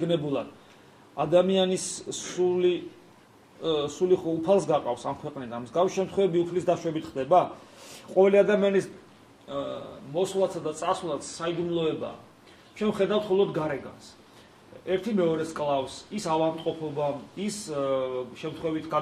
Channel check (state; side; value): identical; both; correlation 1.00